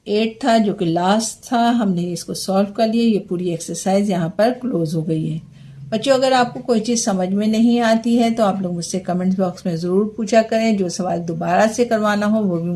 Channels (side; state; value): both; identical; correlation 1.00